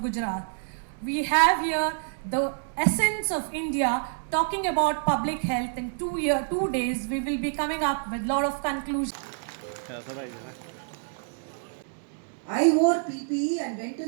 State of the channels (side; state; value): left; silent; 60 dB below the other